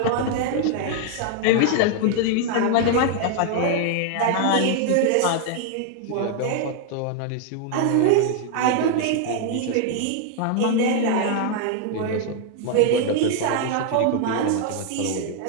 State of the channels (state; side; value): different; both; correlation 0.00